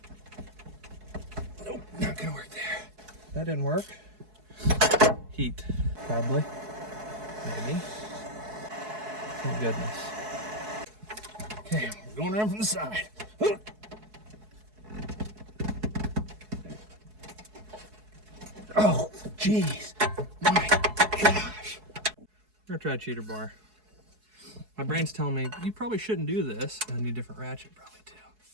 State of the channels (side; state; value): left; late; 4.7 ms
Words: Nope, not gonna work there. That didn't work. Heat, probably. Maybe. Thank goodness. Okay, we're going around from the side. Oh, jeez. My gosh. I'm gonna try a cheater bar. My brain's telling me, you probably shouldn't do this. I need a different ratchet probably too.